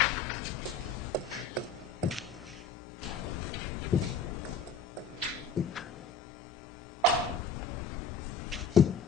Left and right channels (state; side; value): quieter; right; 4.5 dB